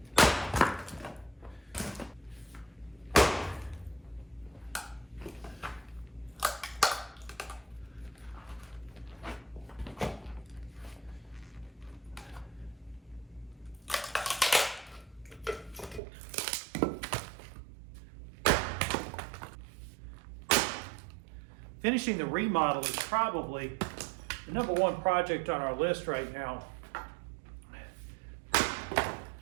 Finishing the remodel is probably the number 1 project on our list right now.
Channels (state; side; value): drops out; left; at 16.0 s